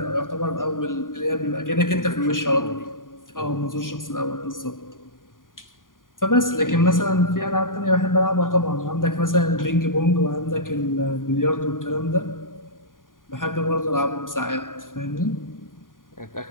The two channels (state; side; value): late; right; 0.90 ms